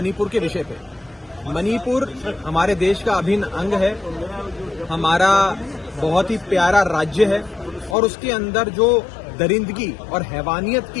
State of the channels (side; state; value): right; drops out; at 8.0 s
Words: के विषय पे। मणिपुर हमारे देश का अभिन्न अंग है, हमारा बहुत ही प्यारा राज्य है और उसके अंदर जो दरिंदगी और हैवानियत